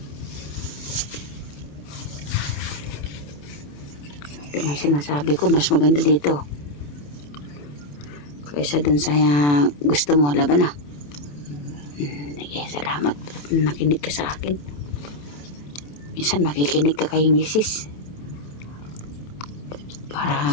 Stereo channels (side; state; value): right; late; 27 ms